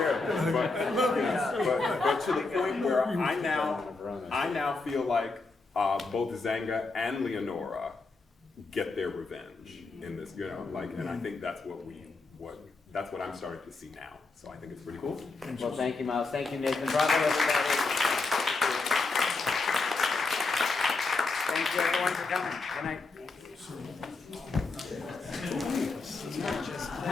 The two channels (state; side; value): quieter; right; 3.7 dB